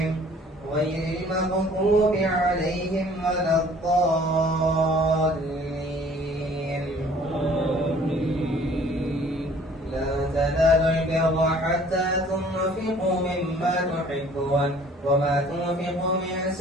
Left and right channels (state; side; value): normal; both; correlation 0.54